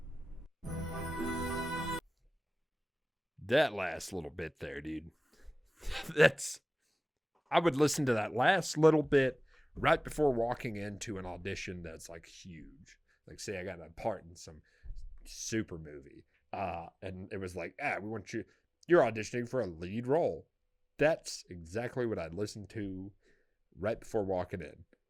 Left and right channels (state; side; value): normal; both; correlation 0.98